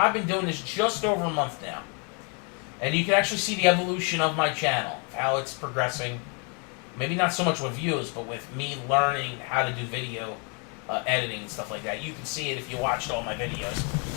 been doing this just over a month now. And you can actually see the evolution of my channel, how it's progressing. Maybe not so much with views, but with me learning how to do video editing and stuff like that. You can see it if you watched all my videos.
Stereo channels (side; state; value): right; quieter; 36.3 dB